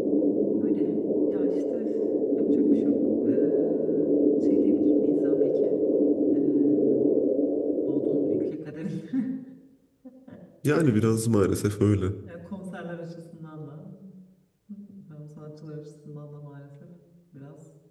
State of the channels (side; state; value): both; identical; correlation 1.00